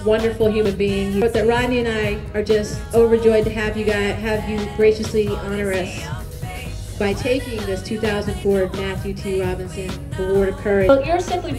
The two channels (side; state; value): both; identical; correlation 1.00